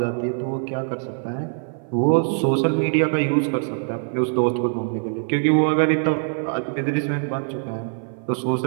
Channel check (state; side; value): silent; left; 57 dB below the other